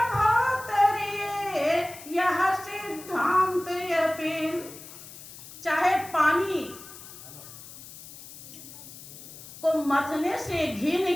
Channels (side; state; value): left; noise; hiss, 16 dB below the sound